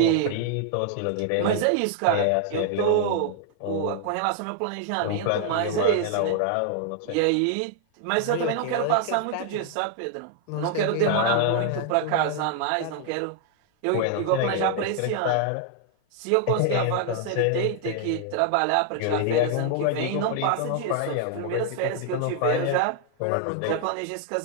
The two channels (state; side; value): different; both; correlation 0.00